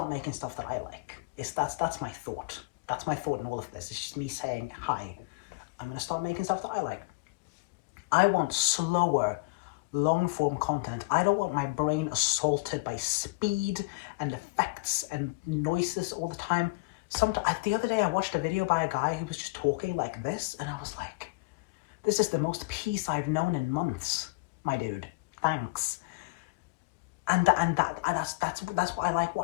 making stuff that I like. That's my thought. That's my thought in all of this. It's just me saying, hi, I'm gonna start making stuff that I like. I want slower, long-form content. I don't want my brain assaulted by speed and effects and noises all the time. The other day I watched a video by a guy who was just talking like this, and I was like, this is the most peace I've known in months, my dude. Thanks. And that's what I like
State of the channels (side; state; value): right; quieter; 26.4 dB